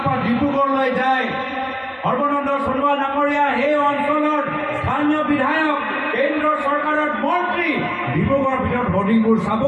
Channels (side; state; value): both; identical; correlation 1.00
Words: পৰা ডিব্ৰুগড়লৈ যায় সৰ্বানন্দ সোণোৱাল ডাঙৰীয়া সেই অঞ্চলৰ স্থানীয় বিধায়ক কেন্দ্ৰৰ চৰকাৰৰ মন্ত্ৰী ডিব্ৰুগড়ৰ ভিতৰত হৰ্ডিংবোৰ চাব